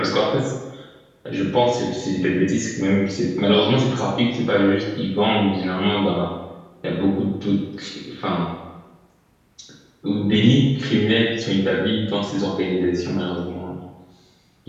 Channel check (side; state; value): both; identical; correlation 1.00